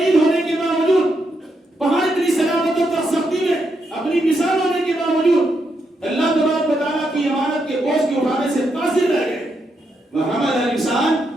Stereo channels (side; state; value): both; normal; correlation 0.81